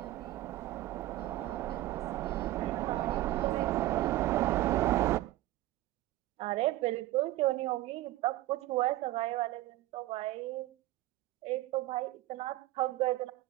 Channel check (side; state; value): left; quieter; 16.2 dB